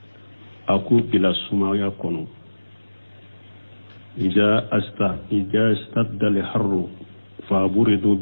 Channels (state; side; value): inverted; both; correlation -1.00